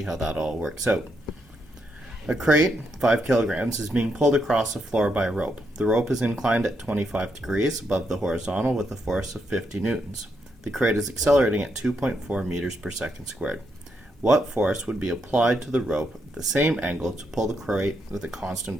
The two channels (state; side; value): normal; both; correlation 0.79